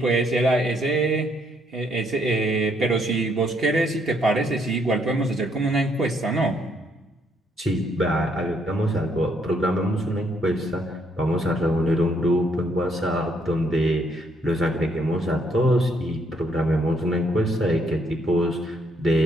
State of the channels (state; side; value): normal; both; correlation 0.71